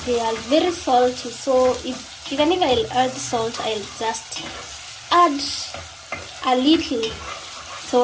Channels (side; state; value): both; identical; correlation 1.00